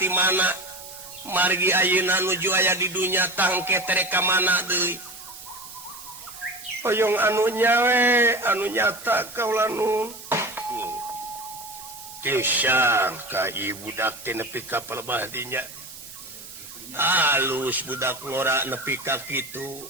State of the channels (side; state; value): right; noise; hiss, 15 dB below the sound